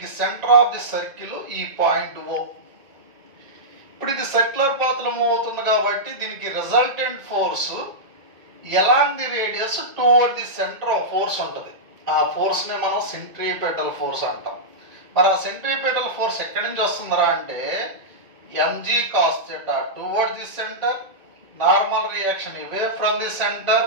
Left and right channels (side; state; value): left; late; 2.2 ms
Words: సెంటర్ ఆఫ్ ది సర్కిల్ ఈ పాయింట్ O. ఇప్పుడు ఇది సర్క్యులర్ పాత్ లో మూవ్ అవుతుంది కాబట్టి దీనికి resultant force along the radius towards the centre of force ఉంటుంది. ఆ ఫోర్స్ ని మనం సెంట్రిపెటల్ ఫోర్స్ అంటాం. మరి ఆ సెంట్రిపెటల్ ఫోర్స్ ఎక్కడి నుంచి వస్తుందిరా అంటే mg cos theta towards the centre, normal reaction away from the centre,